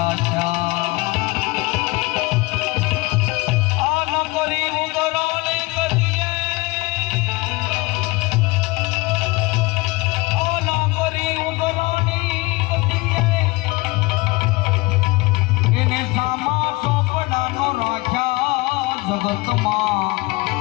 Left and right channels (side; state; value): right; quieter; 23.5 dB